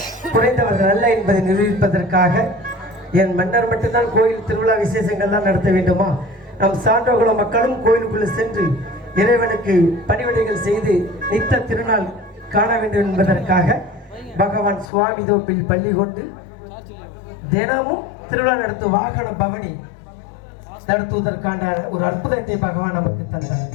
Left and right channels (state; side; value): drops out; right; at 14.9 s